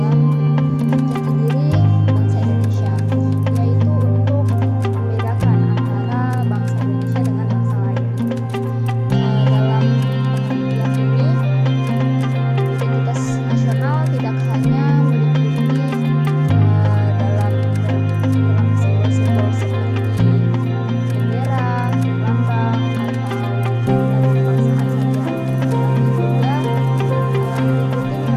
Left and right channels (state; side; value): identical; both; correlation 1.00